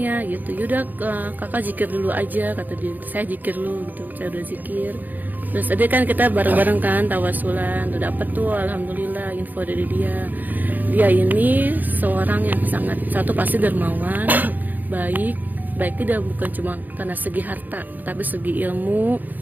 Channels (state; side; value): late; left; 0.085 ms